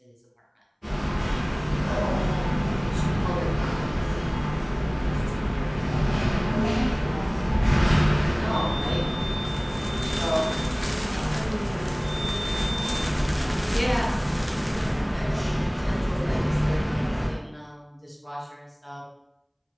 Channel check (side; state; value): both; identical; correlation 1.00